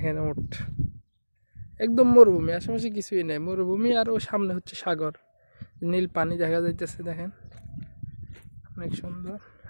ওট একদম মরুভূমি, আশেপাশে কিছুই নেই, মরুভূমি। আর ওই সামনে হচ্ছে সাগর, নীল পানি দেখা যাইতেছে, দেখেন অনেক সুন্দর।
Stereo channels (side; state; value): both; inverted; correlation -1.00